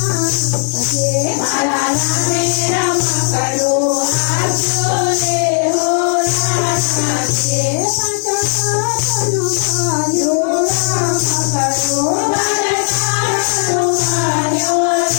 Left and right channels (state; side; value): silent; right; 59 dB below the other